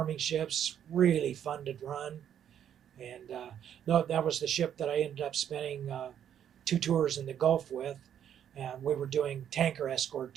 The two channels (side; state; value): left; quieter; 9.5 dB